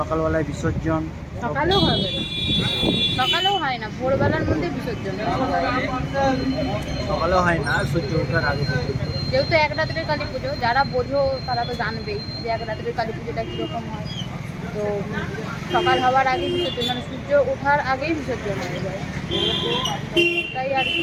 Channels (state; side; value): identical; both; correlation 1.00